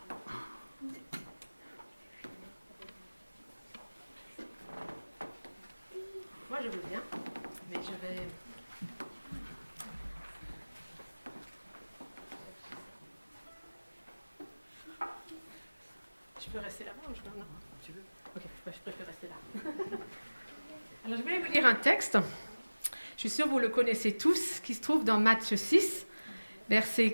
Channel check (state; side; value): inverted; both; correlation -1.00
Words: Moi, je veux bien, mais je vais... Je peux rester là-bas ou je peux... Non, tu veux. Ok, je préfère rester là. Alors, je voulais vous lire un texte. Je suis sûre que vous le connaissez tous, qui se trouve dans Matthieu 6, versets